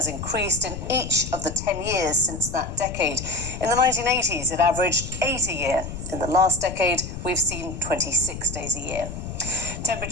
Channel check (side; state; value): left; noise; rumble, 8 dB below the sound